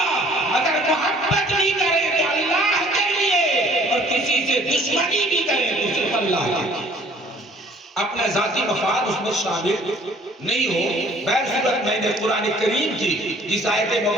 اگر محبت بھی کریں تو اللہ کے لیے، اور کسی سے دشمنی بھی کریں تو صرف اللہ کے لیے۔ اپنا ذاتی مفاد اس میں شامل نہیں ہو۔ بہر صورت میں نے قرآن کریم کی جس آیت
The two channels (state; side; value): normal; both; correlation 0.55